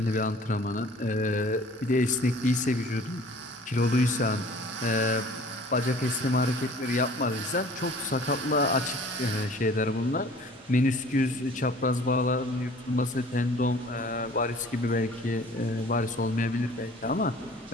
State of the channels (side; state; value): both; normal; correlation 0.49